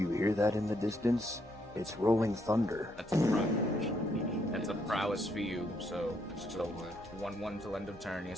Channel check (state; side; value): normal; both; correlation 0.74